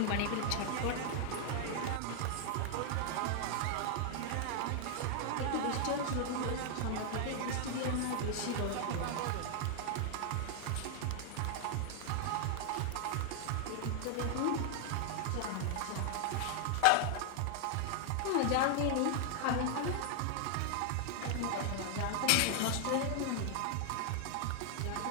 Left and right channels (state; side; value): different; both; correlation 0.00